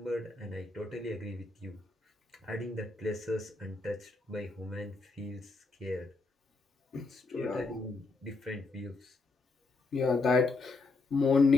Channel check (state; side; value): quieter; right; 3.6 dB